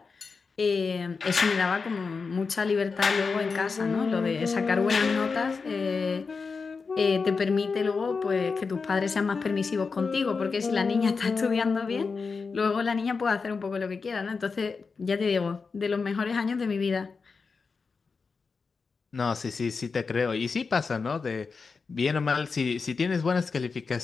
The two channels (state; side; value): quieter; right; 4.8 dB